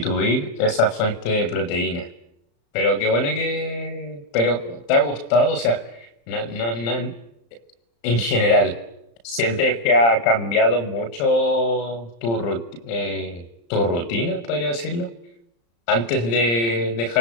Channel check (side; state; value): right; late; 35 ms